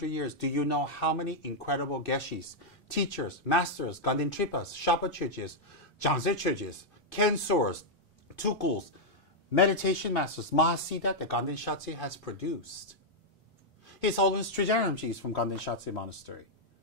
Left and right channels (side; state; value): both; normal; correlation -0.04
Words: years, do you know how many incredible geshis, teachers, masters, Ganden Tripas, Shapa Chögyes, Jangze Chögyes, Kensors, Tukuls, meditation masters, Mahasiddha that Ganden Shatse has produced? His Holiness Trijang Rinpoche is from Ganden Shatse Monastery,